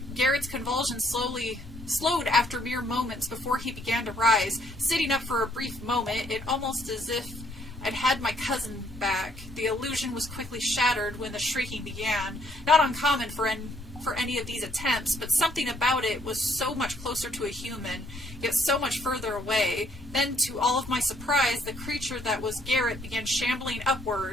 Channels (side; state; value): both; normal; correlation 0.67